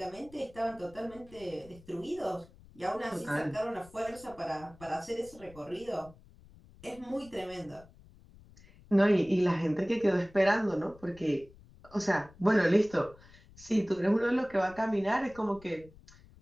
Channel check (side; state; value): left; noise; rumble, 23 dB below the sound